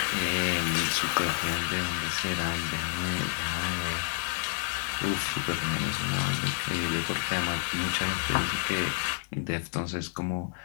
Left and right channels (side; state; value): right; silent; digital silence